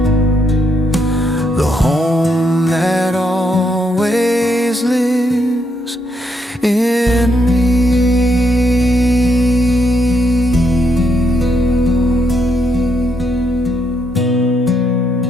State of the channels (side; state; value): both; normal; correlation 0.76